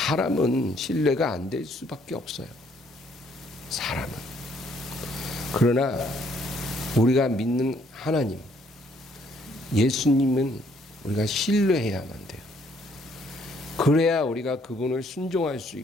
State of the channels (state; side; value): normal; both; correlation 0.66